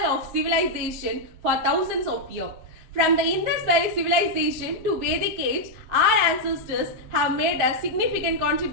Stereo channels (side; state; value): left; late; 7.2 ms